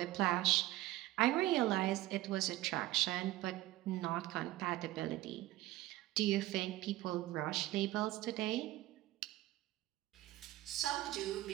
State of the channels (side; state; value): left; quieter; 16.5 dB